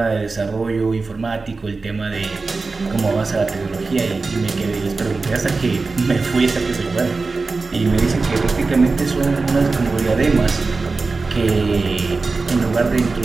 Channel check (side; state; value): left; quieter; 4.0 dB